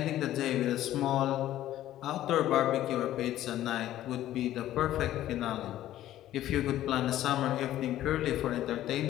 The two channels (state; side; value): quieter; right; 13.3 dB